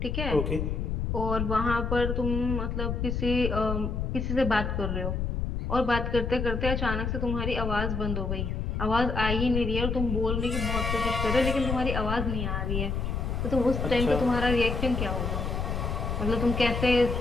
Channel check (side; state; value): left; noise; rumble, 1 dB below the sound